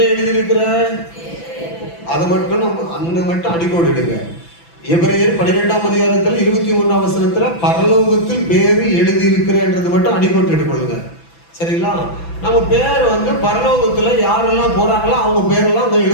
எழுதி இருக்கிற? அதை மட்டும் நம்ம அங்க மட்டும் அடிக்கோடு எடுங்க. எபிரேயர் 12ஆம் அதிகாரத்தில் 21ஆம் வசனத்துல பரலோகத்தில் பேரு எழுதி இருக்கிறன்றது மட்டும் அடிக்கோட்டு எடுக்கொள்ளுங்க. சரிங்களா? நம்ம பேர் வந்து பரலோகத்துல யாரெல்லாம் போறாங்களோ அவங்க பேரெல்லாம் அங்க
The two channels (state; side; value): late; right; 6.0 ms